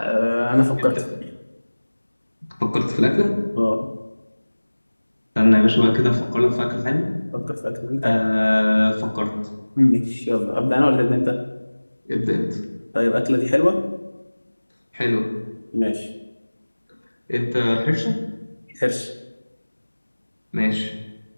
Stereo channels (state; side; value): inverted; both; correlation -1.00